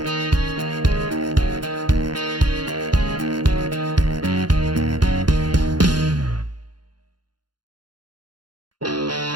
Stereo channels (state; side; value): late; left; 0.71 ms